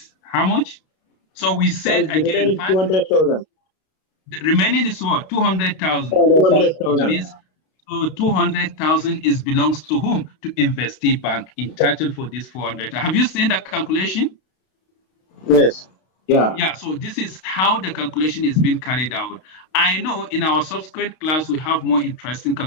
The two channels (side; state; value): right; late; 32 ms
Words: How much? So we said again 200,000. The remaining is what? 200,000. 200,000. So 200,000 belongs to whom? To investee bank, entitled for this 400. Have you seen that calculation? Yes. Yeah. Yeah. So this is how the calculation is being carried out. I know in our subsequent class we have more interesting